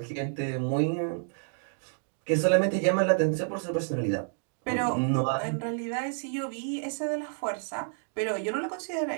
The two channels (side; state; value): left; silent; digital silence